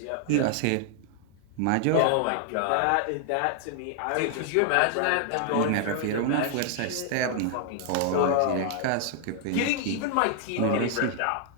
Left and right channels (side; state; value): both; different; correlation 0.00